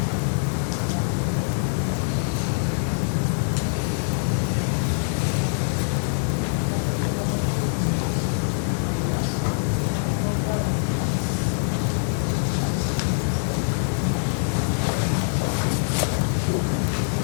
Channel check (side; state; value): right; silent; digital silence